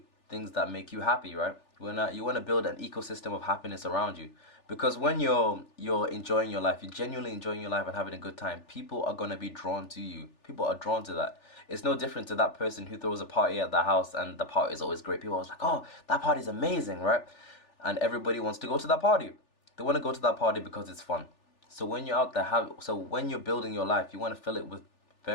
things that make you happy, right? You want to build an ecosystem of happiness around you, because when you're enjoying your life, you're genuinely enjoying your life and having a good time, people are going to be drawn to you. People are drawn to that. It's no different to that person who throws a party at their house and the party is always great. People are like, oh, that party is amazing, right? And everybody wants to go to that party. They want to go to that party because it's fun. So when you're out there, when you're building your life, you want to fill it with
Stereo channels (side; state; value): right; late; 3.4 ms